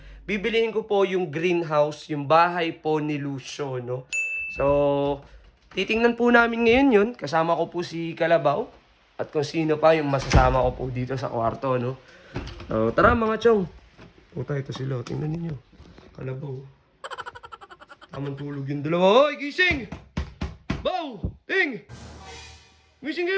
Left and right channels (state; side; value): identical; both; correlation 1.00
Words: Bibilihin ko po yung greenhouse, yung bahay po ni Lucio, no. So, titingnan po namin ngayon yun. Kasama ko po si Kalabaw at kung sino pa yung masasama ko po dito sa kwarto, no. So, tara mga chong. Puta, ito sila. Tingnan ninyo. Kalabaw. Tamang tulog yung dalawa. Hoy, gising! Baw! Ting! Gising